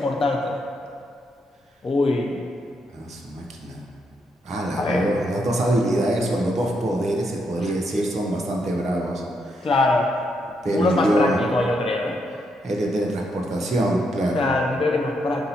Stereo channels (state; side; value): normal; both; correlation 0.79